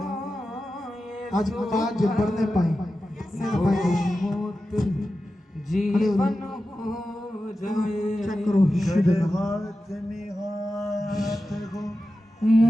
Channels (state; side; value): normal; both; correlation 0.92